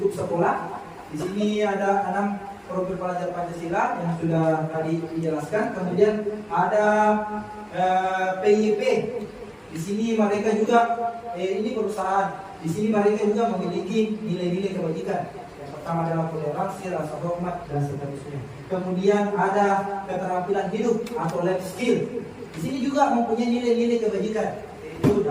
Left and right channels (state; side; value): identical; both; correlation 1.00